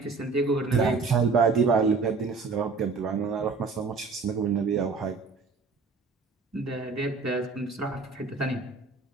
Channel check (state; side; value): quieter; left; 4.4 dB